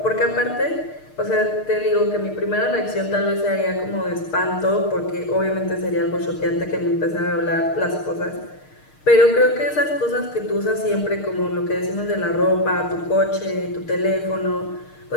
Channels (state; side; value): late; right; 6.5 ms